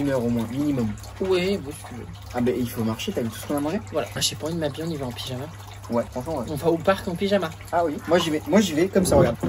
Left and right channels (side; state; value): both; identical; correlation 1.00